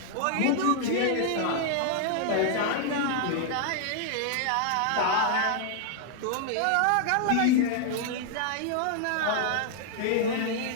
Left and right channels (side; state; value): both; different; correlation 0.00